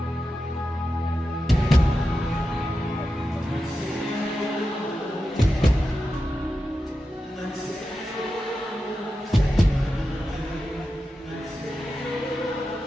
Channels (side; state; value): both; normal; correlation 0.91